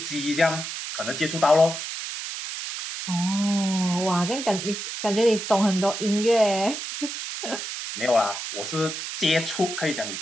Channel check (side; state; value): right; noise; hiss, 6 dB below the sound